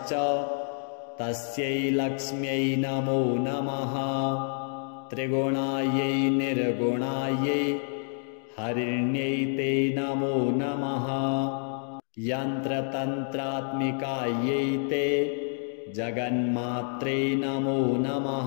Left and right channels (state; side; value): silent; right; 59 dB below the other